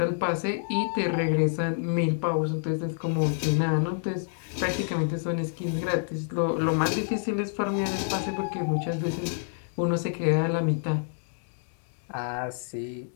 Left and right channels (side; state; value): right; silent; digital silence